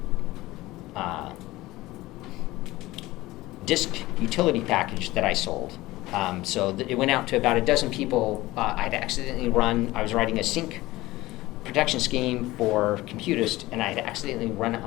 disk utility package that I sold. It went out to about a dozen people. I was writing a sync protection scheme for Computist, and I had accidentally run it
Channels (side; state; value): right; quieter; 18.5 dB